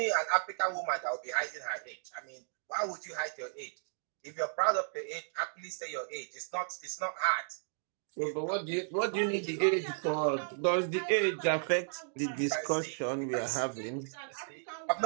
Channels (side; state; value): left; silent; digital silence